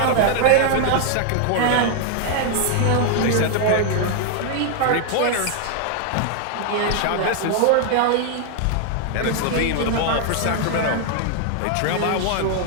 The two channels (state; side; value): different; both; correlation 0.00